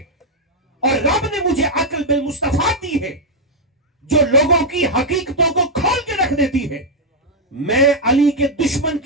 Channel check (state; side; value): normal; both; correlation -0.03